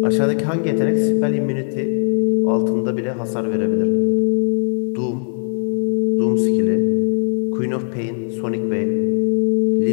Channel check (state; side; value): silent; right; 67 dB below the other